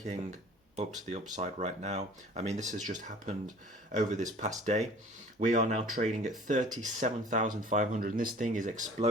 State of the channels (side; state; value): both; normal; correlation 0.48